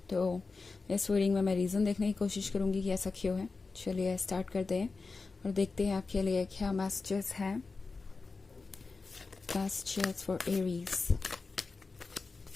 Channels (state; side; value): quieter; right; 4.1 dB